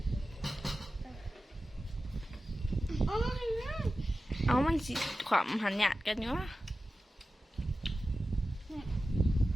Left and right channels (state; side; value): normal; both; correlation 0.94